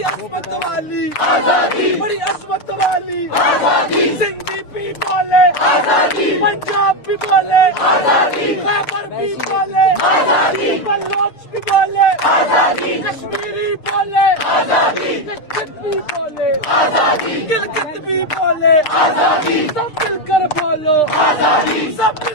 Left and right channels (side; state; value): right; late; 6.7 ms